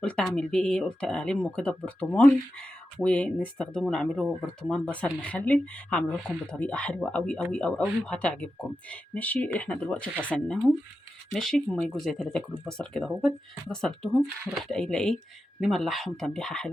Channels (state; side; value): normal; both; correlation 0.90